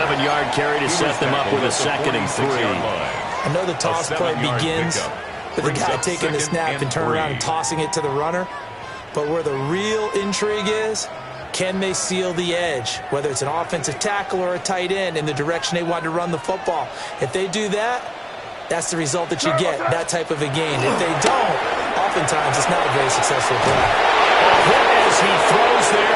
carry to set them up with a 2nd and 3. I know the toss play begins with the guy taking the snap and turn around and tossing it to the runner. But where the real intrigue is, can they seal the edge, whether it's an offensive tackle or a tight end, in the direction they want to run the football? If they do that, that's the result that you get, that type of a gain. If they don't, oftentimes it's not a very successful play. As he throws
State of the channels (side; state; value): both; identical; correlation 1.00